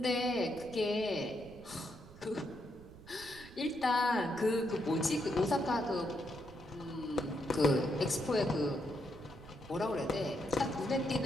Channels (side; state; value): right; noise; rumble, 19 dB below the sound